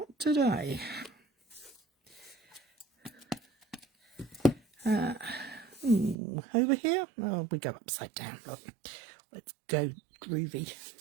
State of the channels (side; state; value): left; drops out; at 6.2 s